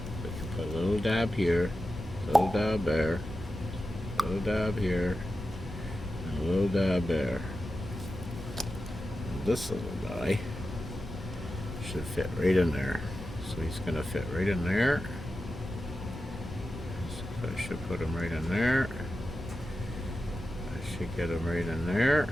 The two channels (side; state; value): both; normal; correlation 0.91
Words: we can put a little dab here, a little dab there, a little dab here, and a little dab there. And this little guy should fit right in there. So he's going to fit right in there. So I should put him right in there. I should get him right in there.